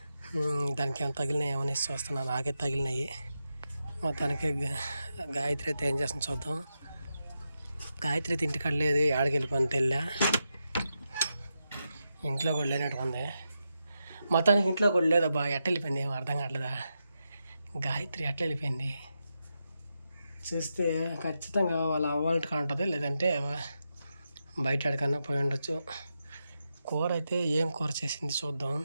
దానికి ఏమైనా తగిలినాయి ఏమని చూస్తున్నాను. నాకే తగిలినాయి. మొత్తానికి గాయత్రి అయితే ఏం చేస్తుంది చూద్దాం. గాయత్రి అయితే ఇంటికాడ లేదు, ఆడికి వెళ్ళిపోయిన తెల్లా. ఇంట్లో కూడా లేనట్టు ఉంది. మొత్తానికి ఇంట్లో కూడా లేదబ్బా. ఎట్ట వెళ్ళిపోయింది ఏమో అర్థం కావట్లేదా. గాయత్రి ఎట్లా వెళ్ళిపోయింది చూస్తే ఖచ్చితంగా వాళ్ళ అవ్వాలంటే ఉంటుంది, లేదంటే బయట ఎక్కడికన్నా పోయి ఉండొచ్చు. కూర అయితే ఏం కూర చేసింది చూద్దాం.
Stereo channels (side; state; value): both; inverted; correlation -0.87